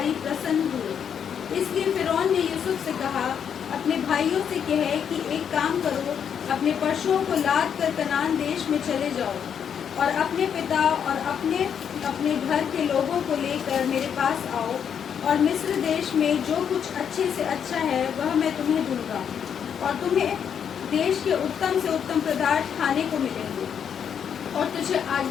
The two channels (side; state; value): right; quieter; 8.0 dB